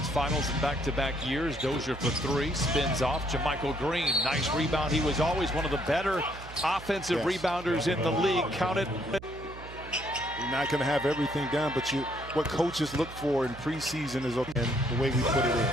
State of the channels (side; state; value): right; noise; hum, 15 dB below the sound